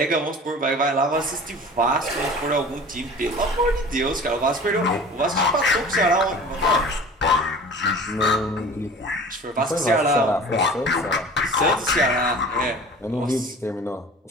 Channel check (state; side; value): normal; both; correlation 0.41